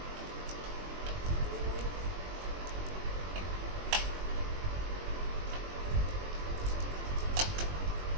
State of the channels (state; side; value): late; left; 21 ms